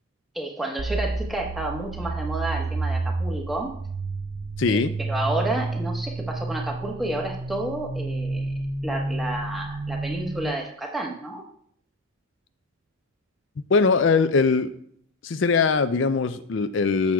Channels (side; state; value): both; normal; correlation 0.35